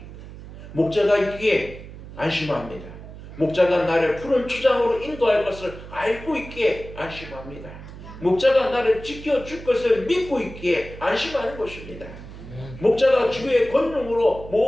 목자가 있기에 안심합니다. 목자가 나를 푸른 초장으로 인도할 것을 알고 있기에 안심합니다. 목자가 나를 지켜줄 것을 믿고 있기에 안심하는 것입니다. 목자가 주의 권능으로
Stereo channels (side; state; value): right; noise; hum, 14 dB below the sound